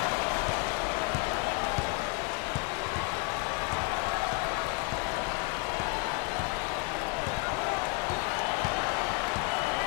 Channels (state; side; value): quieter; right; 30.3 dB